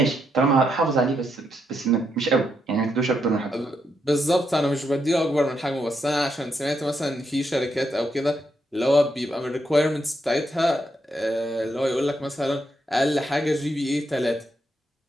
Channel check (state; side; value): normal; both; correlation 0.79